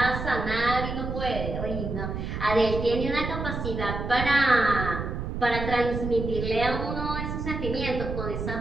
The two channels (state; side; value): noise; right; rumble, 4 dB below the sound